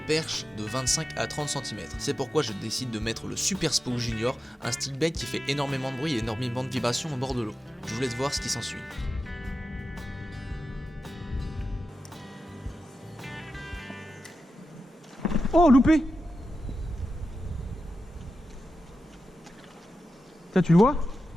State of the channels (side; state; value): both; normal; correlation 0.91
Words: de 25 à 30 cm. C'est pourquoi je décide de mettre le Super Spook Junior, un steelbait qui fait énormément de bruit et énormément de vibrations au bord de l'eau. Je vous laisse voir ce qui s'ensuit. Oh, loupé! Tiens, tu le vois?